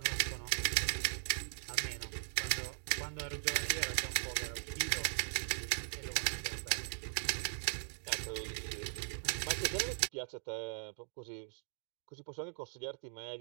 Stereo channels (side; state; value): left; silent; digital silence